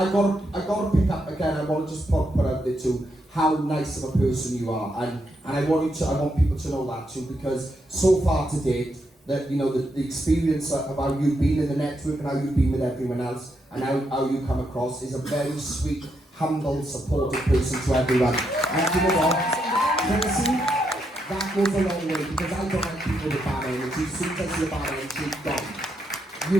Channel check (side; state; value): both; normal; correlation 0.80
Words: got to pick up again, I want to just put out there too, how nice of a person you are. And I want people to know that too, because so far to date, that, you know, the experience of how you've been in the network and how you've been with everyone else, and how you come across is a very sweet, humble, supportive person to everyone. And you know what, Tracie, that goes a long way, because I don't like people with bad energy. As soon as I see a bad energy, gone.